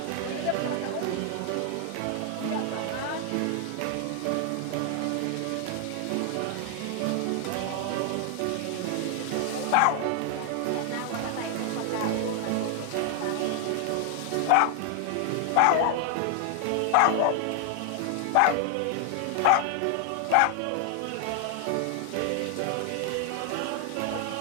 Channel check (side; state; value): both; different; correlation 0.00